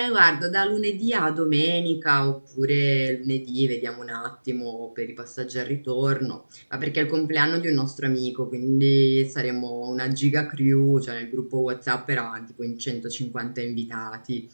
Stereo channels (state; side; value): inverted; both; correlation -1.00